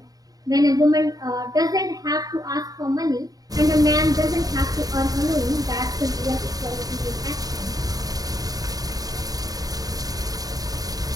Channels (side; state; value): left; late; 0.18 ms